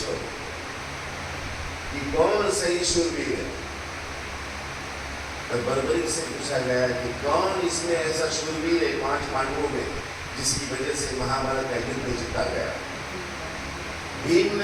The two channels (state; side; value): identical; both; correlation 1.00